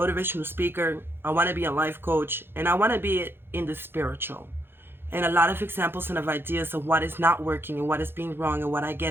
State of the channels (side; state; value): left; late; 0.10 ms